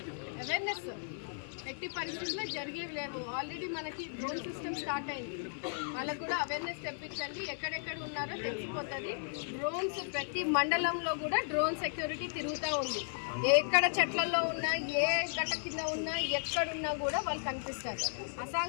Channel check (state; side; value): silent; right; 54 dB below the other